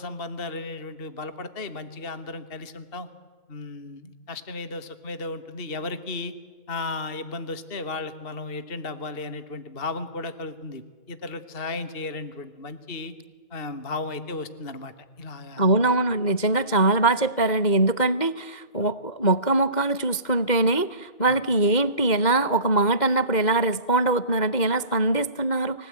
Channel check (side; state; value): right; late; 2.1 ms